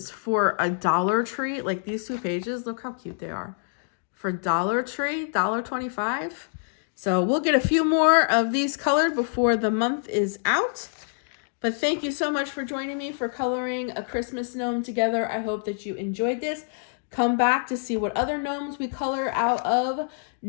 For a Dollar Tree, like these 2 pages, look how cute they are. For Dollar Tree, $1.25. So we'll get a few more of these colored before the month is out. But thank you so much for joining me for coloring a Christmas gnome together. I hope that you enjoyed this. Come back to see what other gnomes we color out of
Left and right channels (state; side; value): silent; right; digital silence